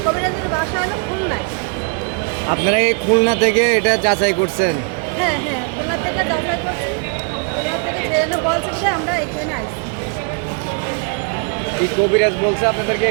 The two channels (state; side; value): quieter; left; 37.1 dB